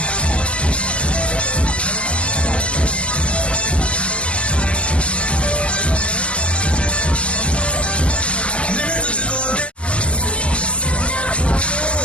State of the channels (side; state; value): right; late; 0.059 ms